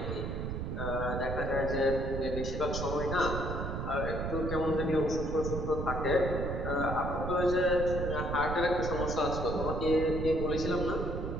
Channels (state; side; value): noise; right; rumble, 3 dB below the sound